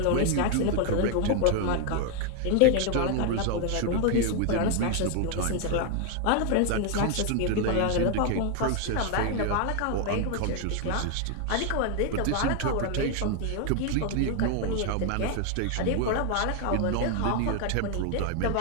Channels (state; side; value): different; both; correlation 0.00